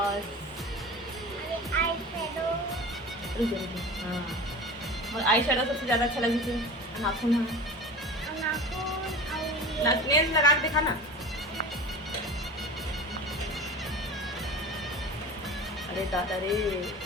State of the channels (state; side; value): normal; both; correlation 0.35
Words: हाँ और आई शेडो सबसे ज़्यादा अच्छा लगी थी। नाखून है नेल्स लगा के दिखा ना। अरे दादा रे